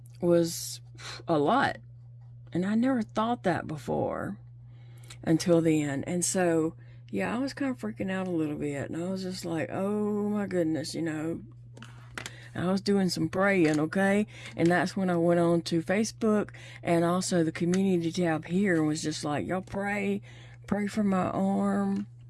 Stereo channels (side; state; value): both; identical; correlation 1.00